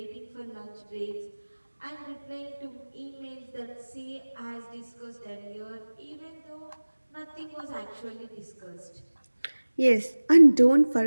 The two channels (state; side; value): inverted; both; correlation -1.00